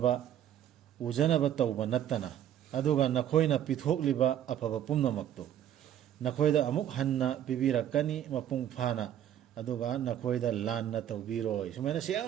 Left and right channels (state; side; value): quieter; left; 10.7 dB